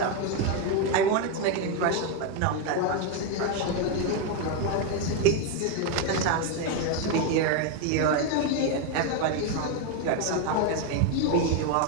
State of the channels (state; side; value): different; both; correlation 0.02